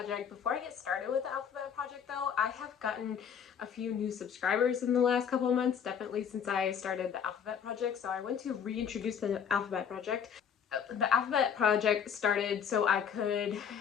Before I get started with the alphabet project though, I have gotten a few new subscribers in the last couple of months, definitely since I started the alphabet project. So I want to reintroduce the alphabet project. The alphabet project started so I could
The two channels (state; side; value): quieter; right; 7.6 dB